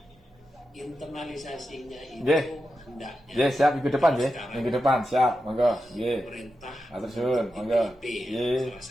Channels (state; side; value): normal; both; correlation 0.89